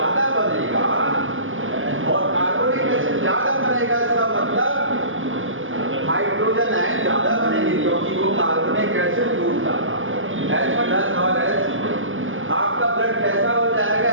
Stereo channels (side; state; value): left; late; 0.58 ms